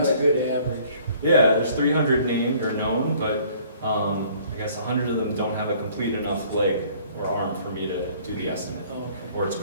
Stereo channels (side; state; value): both; inverted; correlation -0.56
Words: a good average. Yeah, there's 300 named or known, but I guess 100 of them don't have a complete enough leg or arm for me to do the estimate. Oh, okay. Or it's